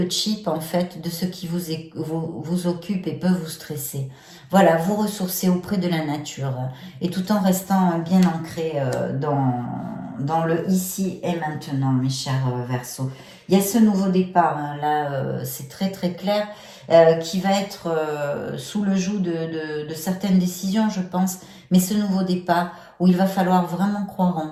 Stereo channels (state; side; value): identical; both; correlation 1.00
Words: chip en fait de ce qui vous occupe et peut vous stresser. Voilà, vous ressourcer auprès de la nature et tout en restant bien ancré dans le ici et maintenant, mes chers Verseaux. Il y a ce nouveau départ, hein, là c'est très très clair, qui va être sous le joug de certaines décisions, je pense, mais ce nouveau départ où il va falloir vraiment croire en